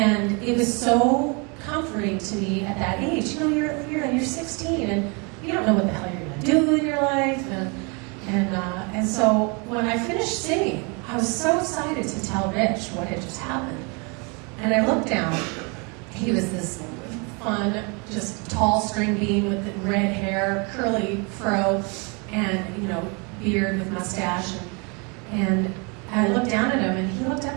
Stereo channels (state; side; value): quieter; left; 32.0 dB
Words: it was so comforting to me at that age. You know, you're 16, and you don't know what the hell you're going to do in your life. And so when I finished singing, I was so excited to tell Rich what had just happened. And I looked down. He was this fun, just tall string bean with the red hair, curly fro, and, you know, beard with mustache. And I looked down at him, and he looked up